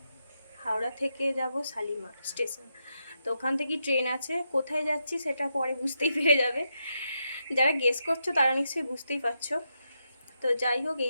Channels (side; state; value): both; inverted; correlation -0.83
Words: হাওড়া থেকে যাব শালিমার স্টেশন। তো ওখান থেকে ট্রেন আছে, কোথায় যাচ্ছি সেটা পরে বুঝতেই পেরে যাবে। যারা গেস করছো তারা নিশ্চয়ই বুঝতেই পারছো। তো যাই হোক,